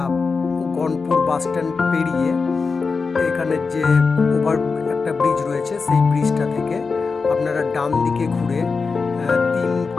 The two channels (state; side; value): quieter; right; 4.7 dB